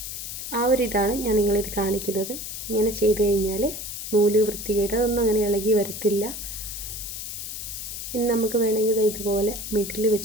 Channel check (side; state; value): left; noise; hiss, 7 dB below the sound